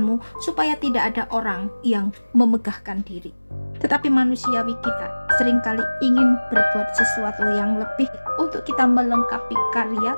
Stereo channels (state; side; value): inverted; both; correlation -1.00